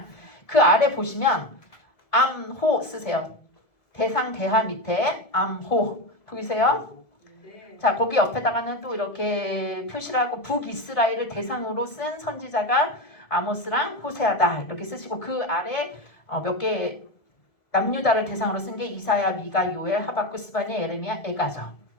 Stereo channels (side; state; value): right; late; 1.7 ms